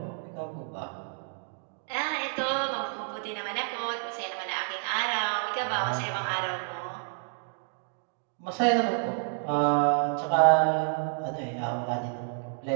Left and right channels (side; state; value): left; silent; digital silence